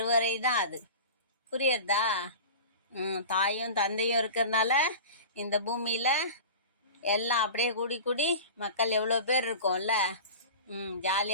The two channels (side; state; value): both; inverted; correlation -0.35